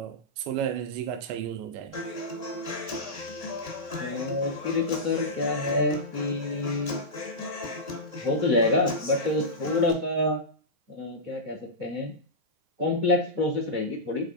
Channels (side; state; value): left; late; 9.4 ms